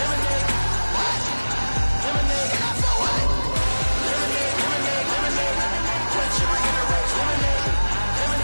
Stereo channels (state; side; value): inverted; both; correlation -1.00